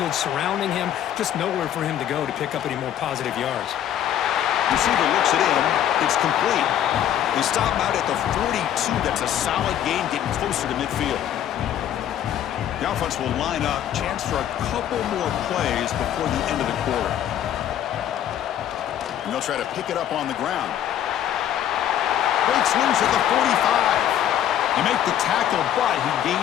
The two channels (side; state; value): right; quieter; 10.8 dB